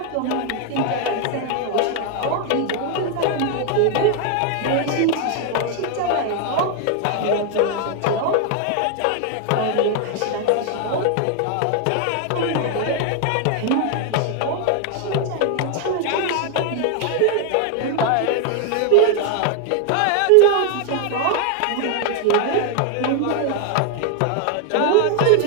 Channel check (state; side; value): different; both; correlation 0.01